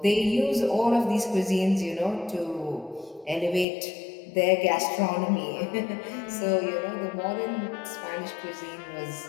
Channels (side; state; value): right; drops out; at 3.7 s